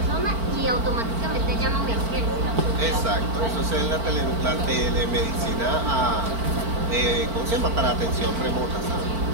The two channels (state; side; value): late; left; 4.4 ms